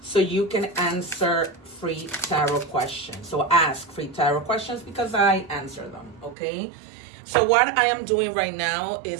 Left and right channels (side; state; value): left; drops out; at 6.4 s